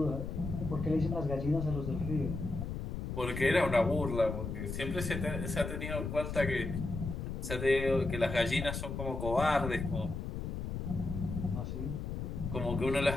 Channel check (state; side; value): noise; left; rumble, 4 dB below the sound